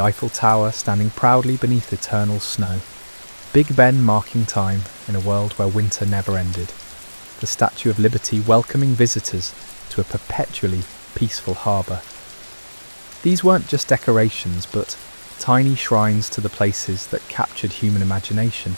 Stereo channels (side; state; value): both; inverted; correlation -1.00